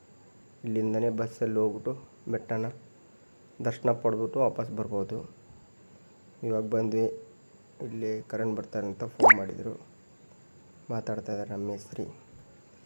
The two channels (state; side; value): inverted; both; correlation -1.00